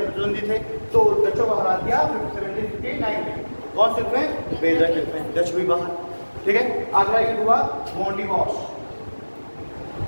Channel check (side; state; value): both; inverted; correlation -1.00